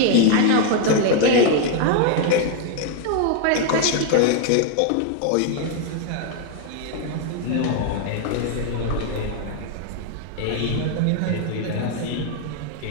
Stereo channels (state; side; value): different; both; correlation 0.01